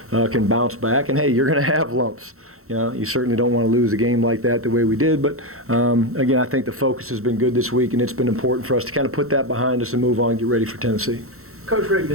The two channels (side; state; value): left; late; 0.63 ms